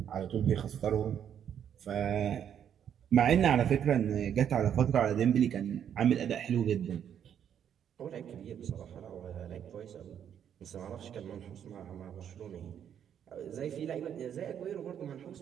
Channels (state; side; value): quieter; left; 9.0 dB